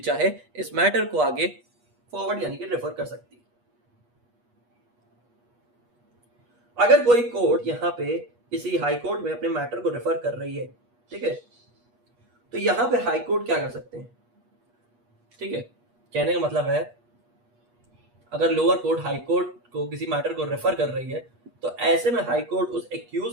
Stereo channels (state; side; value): late; left; 8.3 ms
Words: चाहे इस मैटर को आगे फॉरवर्ड यानी कि रेफर कर सकती है। अगर कोई कोर्ट यहाँ पे किसी हाई कोर्ट में अपने मैटर को रेफर कर रही है, ठीक है, तो यहां पे हाई कोर्ट क्या कर सकते हैं, ठीक है। कहने का मतलब है अगर लोअर कोर्ट हाई कोर्ट को किसी मैटर को रेफर कर रही है तो ऐसे में हाई कोर्ट उस